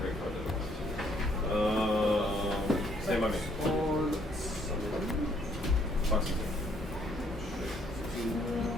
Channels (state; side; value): normal; both; correlation 0.66